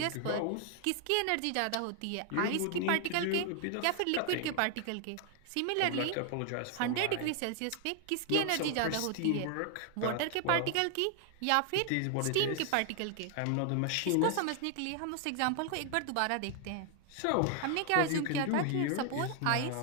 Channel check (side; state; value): both; different; correlation 0.00